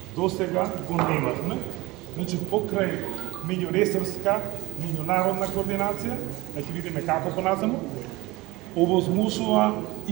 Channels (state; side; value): quieter; left; 21.3 dB